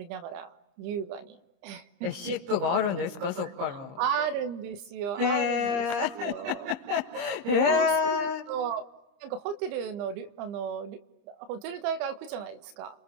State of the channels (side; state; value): left; late; 30 ms